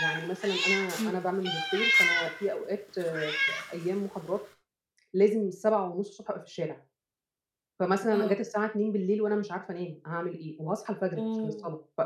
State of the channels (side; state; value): both; identical; correlation 1.00